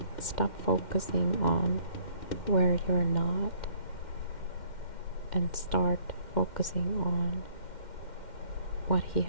stop focusing on where you're not, and start focusing on what He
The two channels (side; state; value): right; late; 2.1 ms